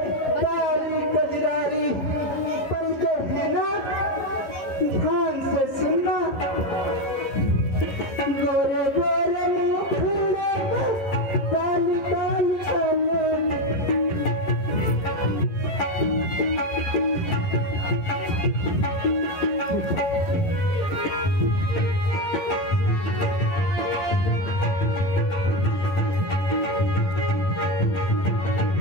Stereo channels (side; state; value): right; late; 11 ms